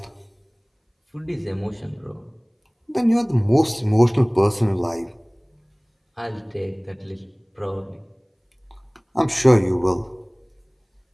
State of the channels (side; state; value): both; identical; correlation 1.00